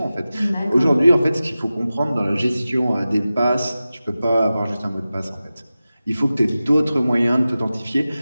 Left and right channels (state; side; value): inverted; both; correlation -0.95